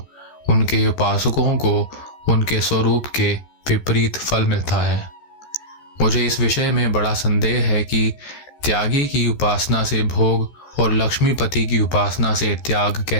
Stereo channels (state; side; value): late; right; 14 ms